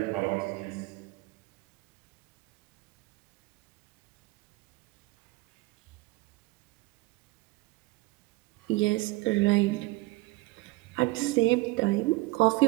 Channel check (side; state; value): left; quieter; 21.6 dB